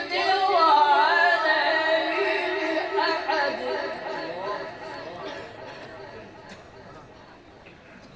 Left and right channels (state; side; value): identical; both; correlation 1.00